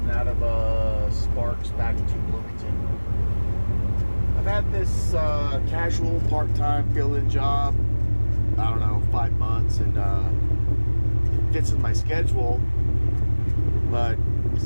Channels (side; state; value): both; inverted; correlation -1.00